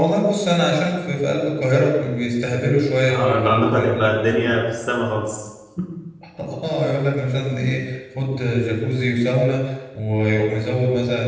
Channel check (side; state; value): both; identical; correlation 1.00